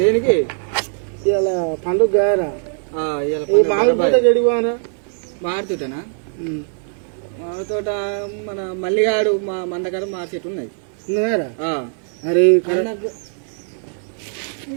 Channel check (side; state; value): left; silent; 66 dB below the other